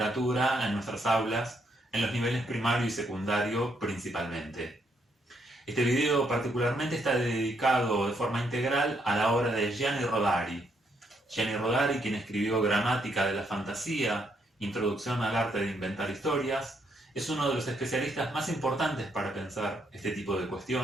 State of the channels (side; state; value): both; normal; correlation 0.74